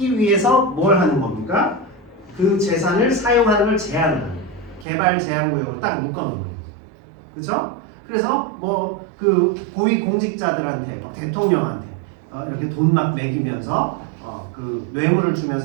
위해서 뭘 하는 겁니까? 그 재산을 사용하는 걸 제한하는 거예요. 개발 제한구역으로 딱 묶어놓는 거예요. 그렇죠? 그래서 뭐 그 고위 공직자들한테 대통령한테 이렇게 돈 막 매기면서 그 뇌물을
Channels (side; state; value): left; drops out; at 4.9 s